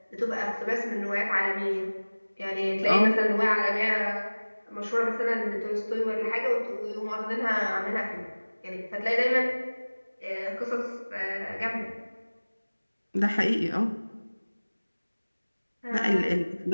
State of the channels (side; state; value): both; inverted; correlation -1.00